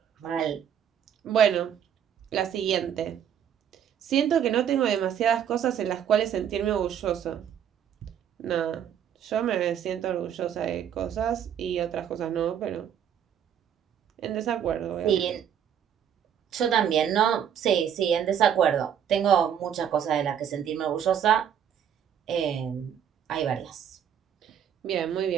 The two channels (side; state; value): left; quieter; 9.0 dB